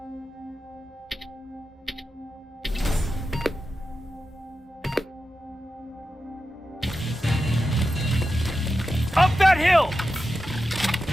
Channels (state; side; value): normal; both; correlation 0.91